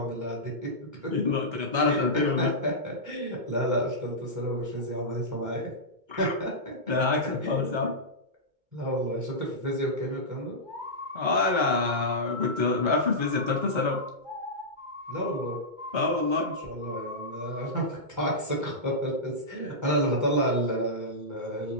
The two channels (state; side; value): late; left; 2.2 ms